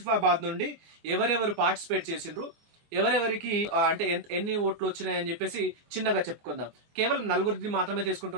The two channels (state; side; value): late; left; 24 ms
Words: నుండి ఎవరెవరు పార్టిసిపేట్ చేసిండ్రు, ఎవరెవరికి అంటే ఎన్ని ఓట్లు వచ్చినాయని చెప్పేసి చిన్నగా చెప్పుకుందాం. కేవలం 4 మాత్రమే